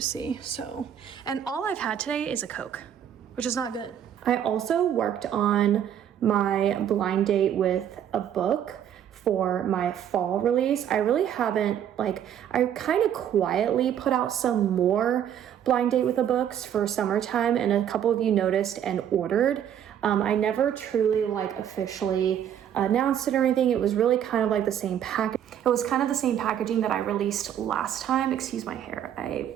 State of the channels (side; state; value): left; quieter; 9.8 dB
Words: So, and all I've had today is a Coke, which is not good. I also worked on my blind date with a book for my fall release. I really haven't, I kind of quietly put out some more blind date with the books for summertime, and a couple of you noticed and ordered. I never truly officially announced it or anything. It was really kind of like the same package. It was kind of the same packaging that I released last time. Excuse my hair,